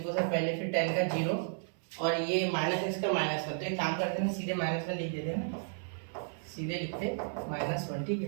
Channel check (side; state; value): left; silent; 56 dB below the other